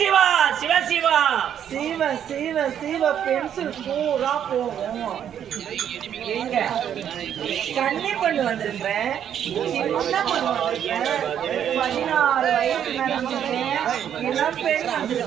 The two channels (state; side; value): quieter; left; 9.4 dB